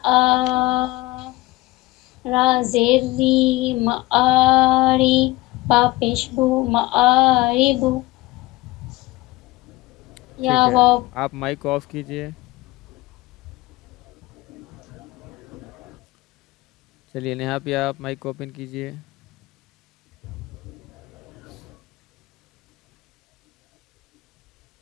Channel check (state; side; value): quieter; right; 19.9 dB